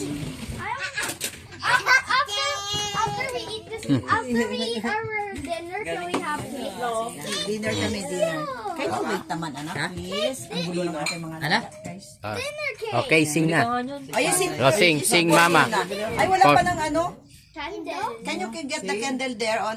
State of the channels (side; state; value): both; identical; correlation 1.00